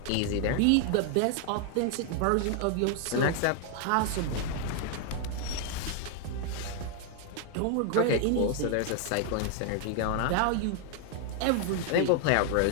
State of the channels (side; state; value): both; different; correlation 0.00